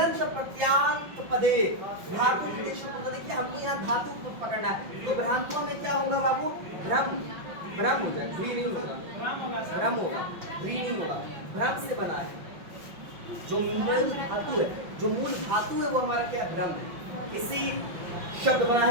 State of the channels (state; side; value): late; left; 5.9 ms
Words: प्रत्यांत पदे धातु निर्देश होगा। देखिए हमको यहाँ धातु को पकड़ना है, तो भ्रांत्वा में क्या होगा बाबू? भ्रम, भ्रम होगा, भ्री नहीं होगा, भ्रम होगा, भ्री नहीं होगा। भ्रम से बना है, जो मूल धातु है, जो मूल धातु है वो हमारा क्या है? भ्रम है। इसी शब्द बना